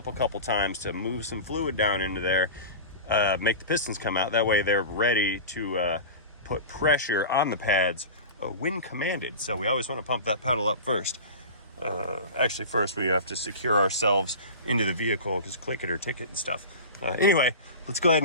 a couple times to move some fluid down into there, make the pistons come out. That way they're ready to put pressure on the pads when commanded. So we always want to pump that pedal up first. Actually, first we have to secure ourselves into the vehicle, because click it or ticket and stuff. Anyway, let's go ahead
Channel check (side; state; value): both; inverted; correlation -0.31